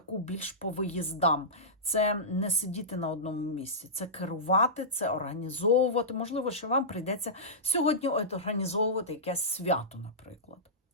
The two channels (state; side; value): normal; both; correlation -0.16